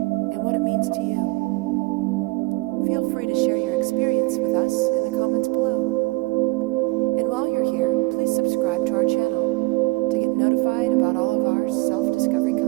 and what it means to you. Feel free to share your experience with us in the comments below. And while you're here, please subscribe to our channel to get notified about all of our self-discovery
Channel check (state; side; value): quieter; left; 25.0 dB